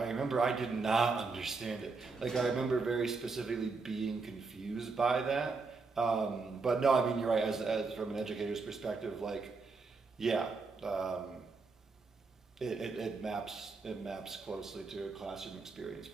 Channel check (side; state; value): left; quieter; 4.2 dB